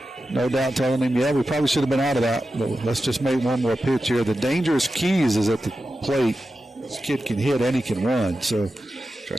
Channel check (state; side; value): normal; both; correlation 0.92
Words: No doubt telling him, yeah, we probably should have been out of that, but let's just make one more pitch here. The dangerous Keys is at the plate. This kid can hit and he can run, so try